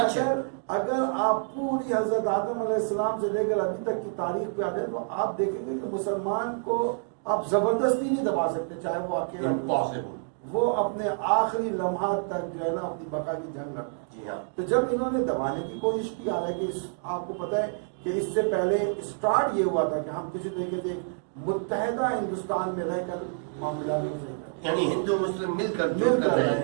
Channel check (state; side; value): silent; left; digital silence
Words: اگر آپ پوری حضرت آدم علیہ السلام سے لے کر ابھی تک کی تاریخ پہ آتے ہیں تو آپ دیکھیں گے کہ مسلمان کو آپ زبردستی نہیں دبا سکتے، چاہے وہ اکیلا وہ اپنے آخری لمحات تک جو ہے نا اپنی بقا کی جنگ لڑتا ہے. جی ہاں. تو جب انہوں نے دبانے کی کوشش کی، حالانکہ آپ کو پتہ ہے کہ اس سے پہلے اسٹارٹ یہ ہوا تھا کہ ہم کسی طریقے سے متحدہ ہندوستان میں رہ کر معاملات کو صحیح کریں، یعنی ہندو مسلم مل کر رہے